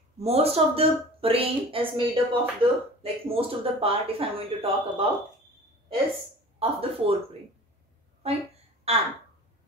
Most of the brain is made up of the, most of the part, if I am going to talk about, is of the forebrain. Right? And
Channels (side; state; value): both; normal; correlation 0.41